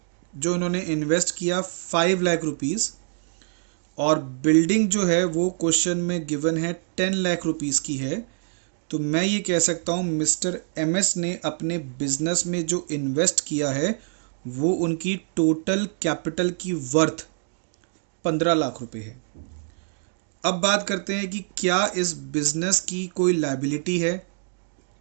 जो उन्होंने इन्वेस्ट किया 5 लाख रुपीज़, और बिल्डिंग जो है वो क्वेश्चन में गिवन है 10 लाख रुपीज़ की है। तो मैं ये कह सकता हूँ मिस्टर एम एस ने अपने बिजनेस में जो इन्वेस्ट किया है वो उनकी टोटल कैपिटल की वर्थ 15 लाख रुपए है। अब बात करते हैं कि क्या इस बिजनेस की कोई लायबिलिटी है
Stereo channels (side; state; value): left; silent; digital silence